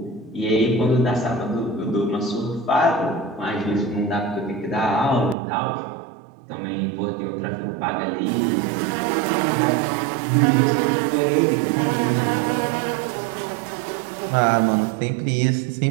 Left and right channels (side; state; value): left; drops out; at 5.4 s